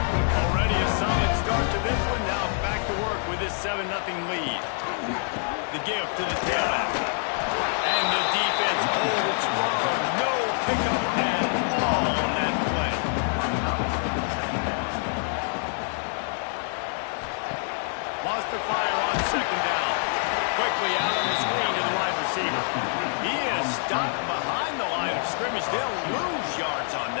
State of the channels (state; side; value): silent; right; 56 dB below the other